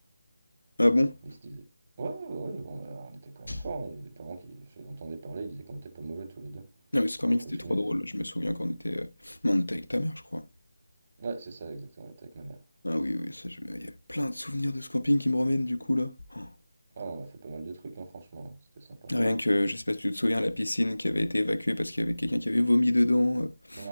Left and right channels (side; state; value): both; inverted; correlation -0.98